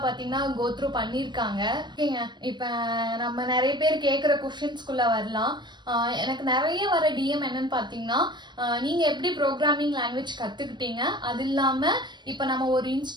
பார்த்தீங்கன்னா கோத்ரூ பண்ணியிருக்காங்க. ஓகேங்க, இப்போ நம்ம நிறைய பேர் கேட்குற கொஷின்ஸ்குள்ளே வரலாம். எனக்கு நிறைய வர டிஎம் என்னன்னு பார்த்தீங்கன்னா, நீங்கள் எப்படி ப்ரோக்ராமிங் லாங்குவேஜ் கற்றுக்கிட்டீங்க, அது இல்லாமல் இப்போ நம்ம ஒரு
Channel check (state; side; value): late; left; 0.22 ms